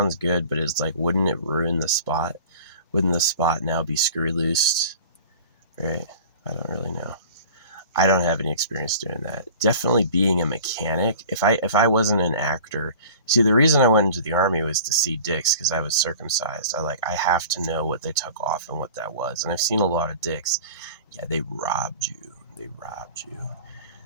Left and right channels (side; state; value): both; inverted; correlation -0.42